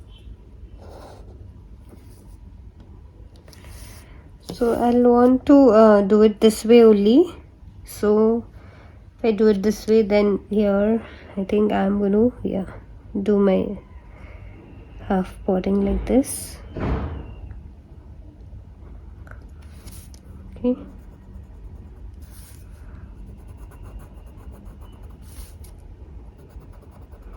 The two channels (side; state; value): both; identical; correlation 1.00